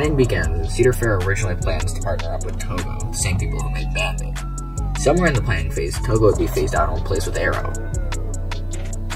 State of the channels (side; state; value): both; identical; correlation 1.00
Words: began when Cedar Fair originally plans to partner up with Togo, the same people who made Bandit. Somewhere in the planning phase, Togo would be phased out and replaced with Arrow.